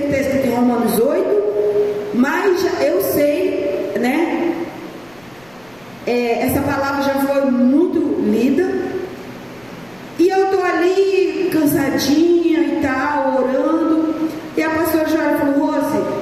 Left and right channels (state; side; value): noise; left; rumble, 30 dB below the sound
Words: está escrito em Romanos 8, mas eu sei, né? Essa palavra já foi muito lida. E eu estou ali cansadinha e tal, orando. E a pastora Joara falou: Rose,